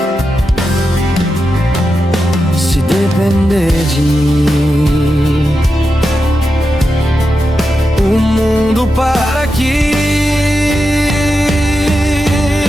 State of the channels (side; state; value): both; normal; correlation 0.89